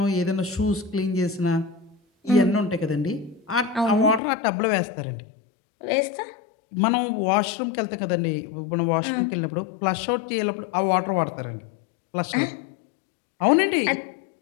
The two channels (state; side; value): drops out; right; at 4.2 s